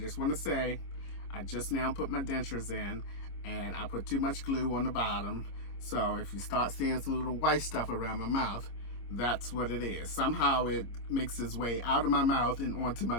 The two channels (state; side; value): late; right; 25 ms